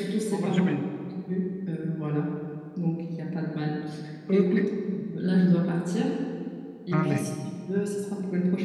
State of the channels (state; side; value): identical; both; correlation 1.00